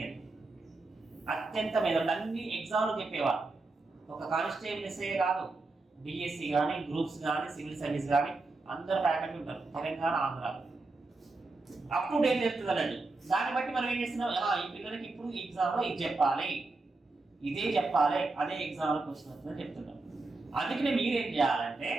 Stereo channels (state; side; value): quieter; left; 3.4 dB